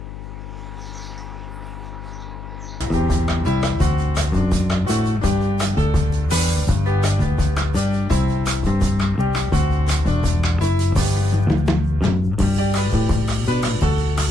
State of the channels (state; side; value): noise; left; hum, 11 dB below the sound